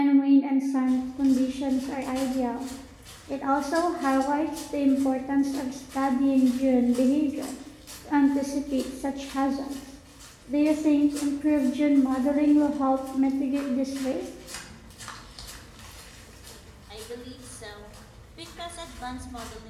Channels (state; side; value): identical; both; correlation 1.00